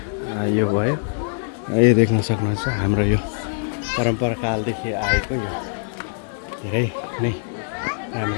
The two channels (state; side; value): silent; right; digital silence